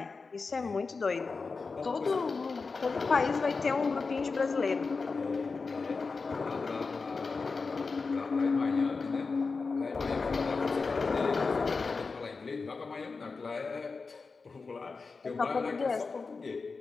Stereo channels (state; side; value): quieter; right; 4.4 dB